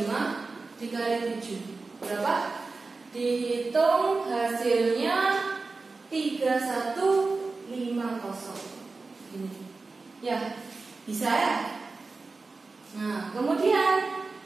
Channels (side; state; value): left; quieter; 3.9 dB